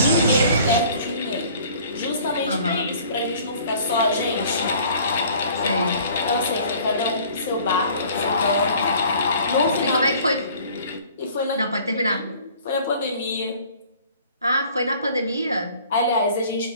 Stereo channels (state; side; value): inverted; both; correlation -0.51